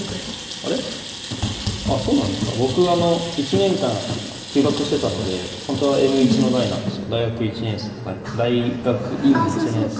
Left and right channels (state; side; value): identical; both; correlation 1.00